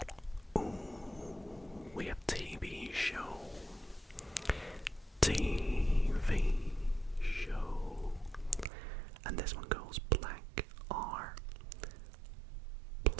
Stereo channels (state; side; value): drops out; left; at 8.7 s